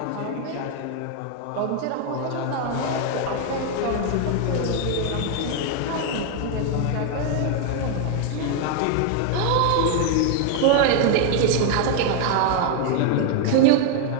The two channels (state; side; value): different; both; correlation 0.00